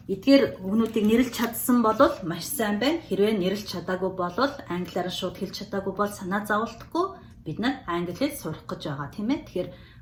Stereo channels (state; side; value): identical; both; correlation 1.00